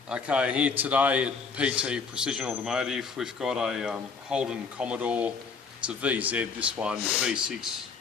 Okay, here today at PT Precision Automotive we've got a Holden Commodore. It's a VZ, this one, V6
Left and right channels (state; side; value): quieter; right; 5.2 dB